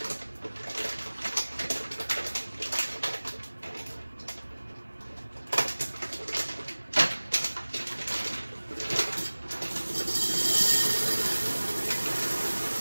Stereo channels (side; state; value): both; inverted; correlation -1.00